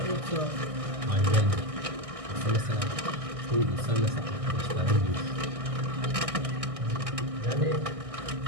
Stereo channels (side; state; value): left; late; 1.6 ms